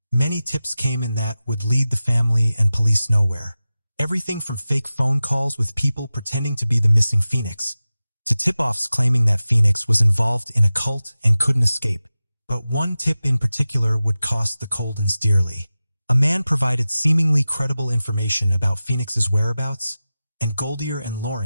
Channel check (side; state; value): both; inverted; correlation -0.95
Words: Many tips came in that would lead the family and police nowhere. Everything from fake phone calls with people pretending to be the missing Phoenix, to tip-offs claiming that Phoenix was involved in a cult and couldn't escape. But one tip in particular would cost the Coldens dearly. A man provided seemingly credible information about Phoenix's whereabouts, and Goldier and